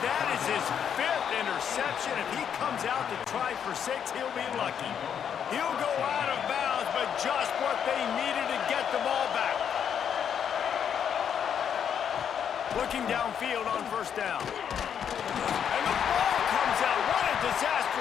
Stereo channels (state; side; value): quieter; right; 8.2 dB